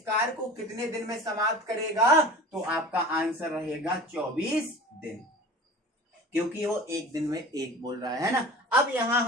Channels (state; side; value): normal; both; correlation 0.38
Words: कार्य को कितने दिन में समाप्त करेगा? तो आपका आंसर रहेगा 24 दिन, क्योंकि वो एक दिन में 1 बोल रहा है ना। अब यहां